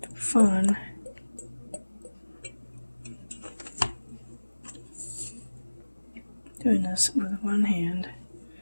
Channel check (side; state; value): both; inverted; correlation -1.00